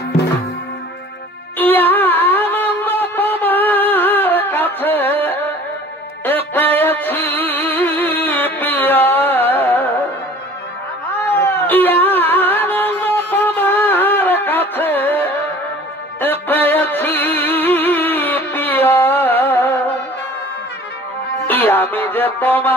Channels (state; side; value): normal; both; correlation 0.47